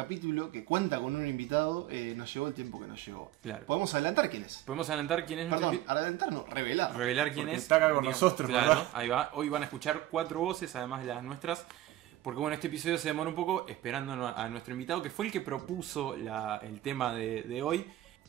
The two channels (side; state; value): left; quieter; 14.8 dB